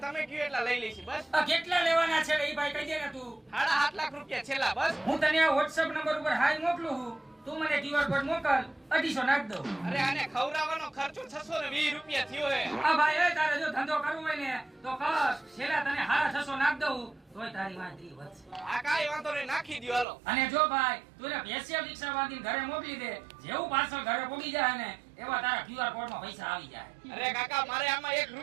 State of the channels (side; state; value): left; drops out; at 20.1 s